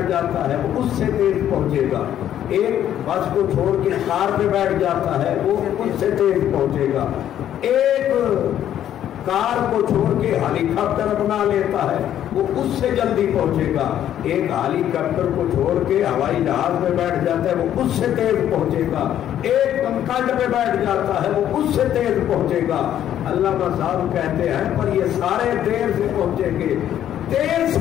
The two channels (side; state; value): right; quieter; 10.9 dB